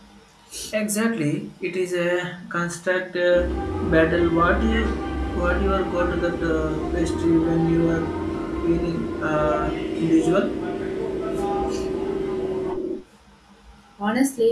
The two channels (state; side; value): identical; both; correlation 1.00